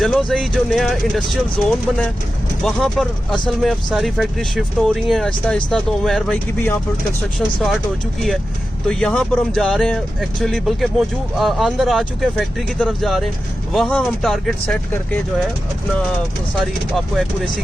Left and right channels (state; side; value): normal; both; correlation 0.92